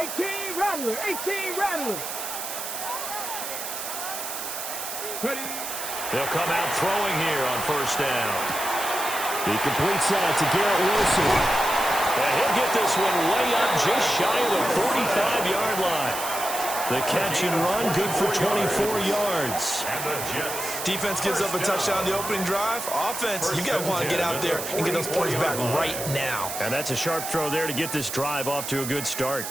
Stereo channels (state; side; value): noise; right; hiss, 6 dB below the sound